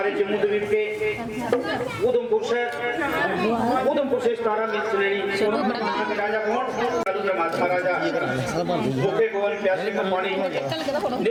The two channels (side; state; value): both; identical; correlation 1.00